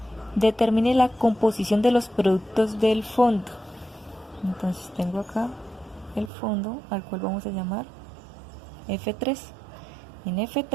Determine la composición de los productos del fondo. Entonces tengo acá el fondo, al cual vamos a llamar F3. En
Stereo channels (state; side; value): drops out; left; at 6.3 s